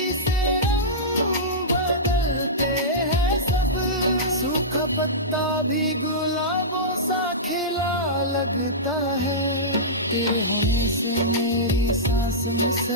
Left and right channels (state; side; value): normal; both; correlation -0.15